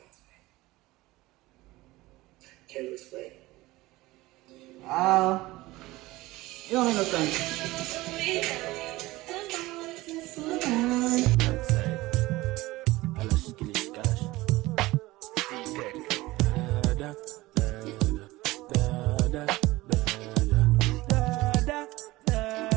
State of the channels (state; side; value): quieter; left; 19.2 dB